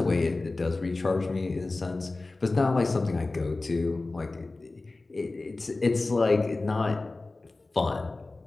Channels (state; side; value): quieter; right; 3.3 dB